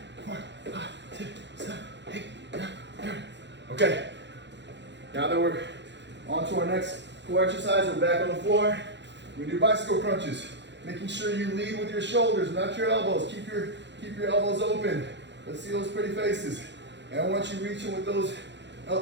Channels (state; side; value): late; left; 0.52 ms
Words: 4, 5, 6, 7, 8, 9, 10. Okay, now that we're on to our next core exercise, we're back on the floor. We do bicycle crunches, making sure you lead with your shoulders, not your elbows. Keep your elbows open. Let's see those pretty faces. And I want you reaching with those